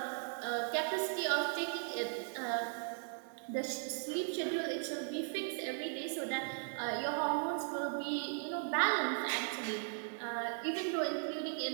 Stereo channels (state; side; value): silent; left; 53 dB below the other